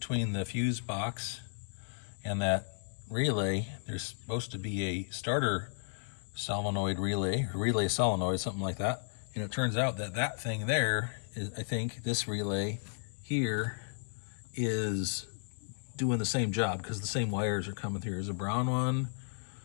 the fuse box and that relay, there's supposed to be a starter solenoid relay, or relay solenoid, something like that. And it turns out that that thing there is, I think this relay here is doing the same job because the same wires are coming through. There's a brown one.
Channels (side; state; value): right; silent; digital silence